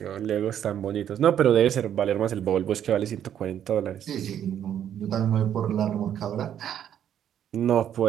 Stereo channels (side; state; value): left; quieter; 9.9 dB